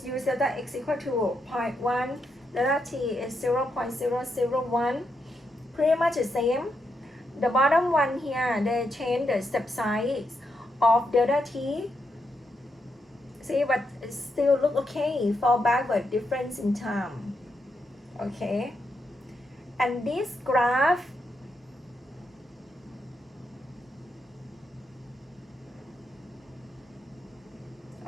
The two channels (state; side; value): normal; both; correlation 0.82